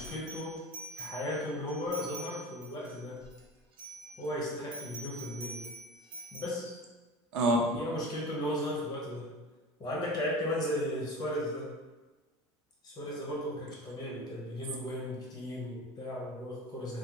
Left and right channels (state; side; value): normal; both; correlation 0.34